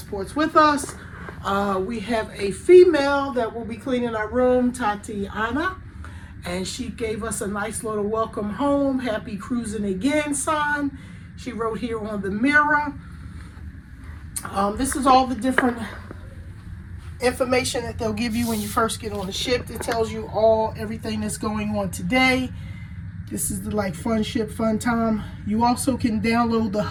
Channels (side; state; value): both; identical; correlation 1.00